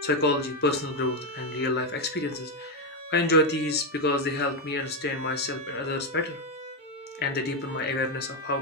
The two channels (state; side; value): normal; both; correlation 0.06